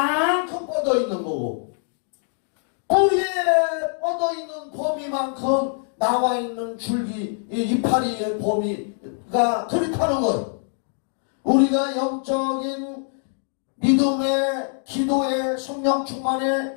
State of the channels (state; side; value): silent; right; 63 dB below the other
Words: 뻗어 있는 거고 뿌리에 뻗어 있는 범위만큼 나와 있는 줄기 이파리의 범위가 그렇다는 거예요. 우리가 영적인 믿음의 기도의 성령